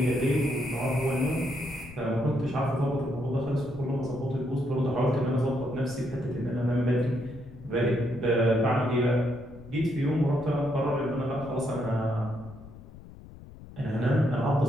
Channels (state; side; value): noise; left; rumble, 17 dB below the sound